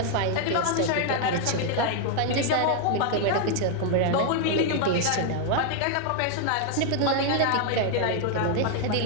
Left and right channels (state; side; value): different; both; correlation 0.00